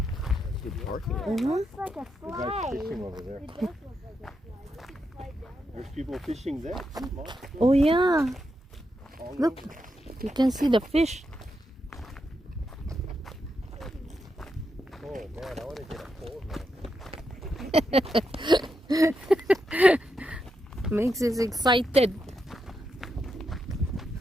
Good parking. Mhm. Looks like a The guy's slide. fishing over there. It does look like a slide. We could slide down there. There's people fishing there. Oh, yeah. All Look. over. You can see the fish. Oh man, I want to get a pole now. Makes us excited.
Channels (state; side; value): normal; both; correlation 0.83